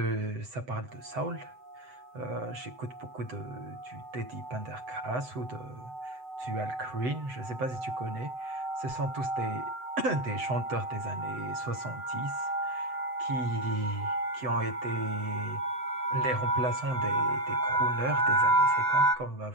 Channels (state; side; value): late; left; 7.9 ms